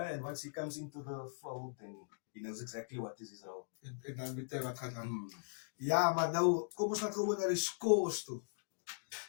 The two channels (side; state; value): right; silent; digital silence